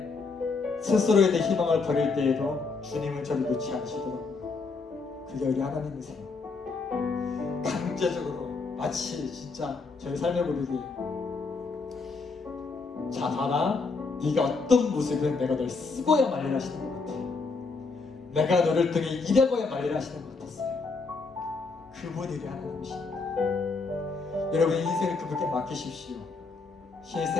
스스로에 대해 희망을 버릴 때에도 주님은 저를 놓지 않으시더라고요. 그게 우리 하나님이세요. 강제적으로 마치 진짜 저희 삶의 고백이 자 봐라, 네가 어떤 모습은 내가 널 쓰고야 말리라 하시는 것 같아. 내가 너를 통해 일하고야 말리라 하시는 것 같았어요. 그분이 우리 하나님이십니다. 여러분 인생을 그분께 맡기십시오.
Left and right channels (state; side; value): quieter; right; 4.2 dB